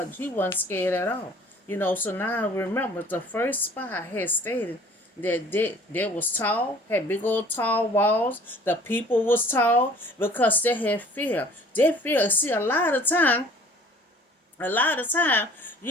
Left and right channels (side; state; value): both; normal; correlation 0.52